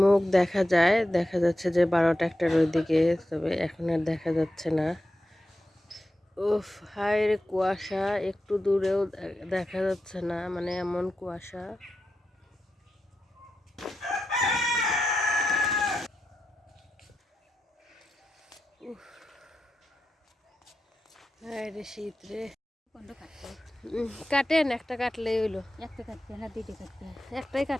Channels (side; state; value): both; normal; correlation 0.90